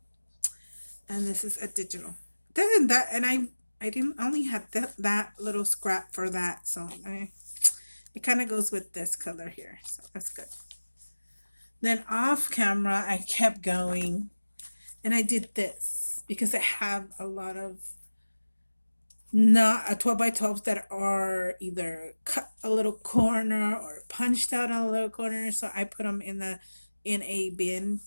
And this is a digital. Doesn't that, and I didn't only had that little scrap for that, so it kind of goes with this color here, so that's good. Then off camera I kept going, and I did this because I have a lot of not a 12 by 12s that are either cut a little corner or punched out a little corner, so I put them in a bin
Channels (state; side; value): inverted; both; correlation -1.00